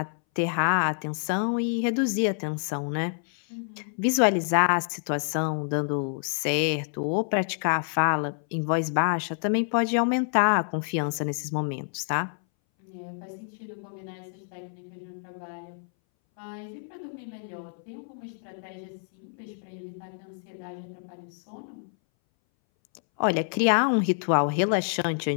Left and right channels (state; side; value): silent; right; 60 dB below the other